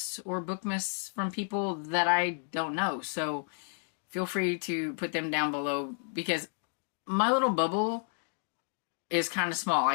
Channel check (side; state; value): right; silent; 57 dB below the other